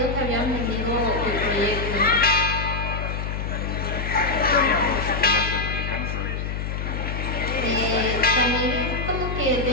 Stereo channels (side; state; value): left; noise; hum, 4 dB below the sound